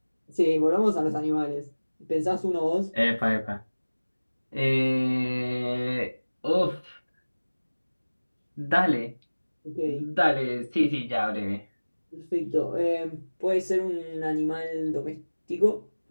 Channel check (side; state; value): both; inverted; correlation -1.00